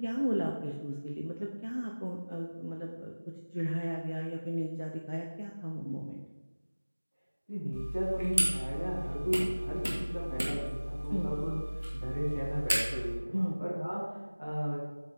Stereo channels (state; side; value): inverted; both; correlation -1.00